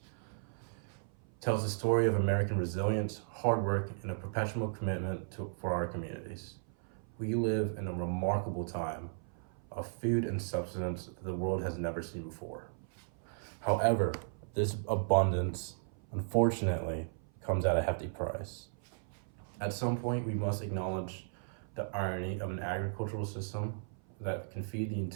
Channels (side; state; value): left; silent; 54 dB below the other